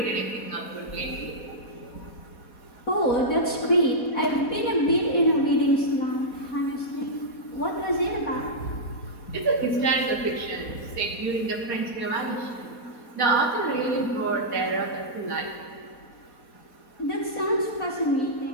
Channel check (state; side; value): late; right; 4.2 ms